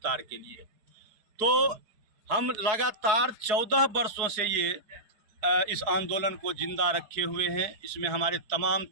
के लिए। तो हम लगातार 14 वर्षों से ये इस आंदोलन को जिंदा रखे हुए हैं। इसमें हमारे तमाम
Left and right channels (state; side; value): late; left; 4.7 ms